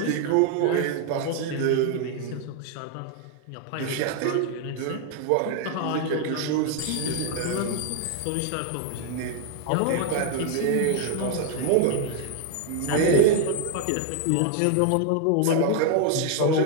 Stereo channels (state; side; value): different; both; correlation 0.00